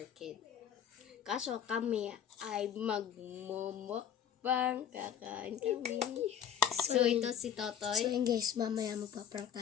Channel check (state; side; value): quieter; right; 8.8 dB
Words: Kid. Kaso kami ay magmumukbang, kakain kami. So ito si Totoy. So yun guys, mamaya magpa-prank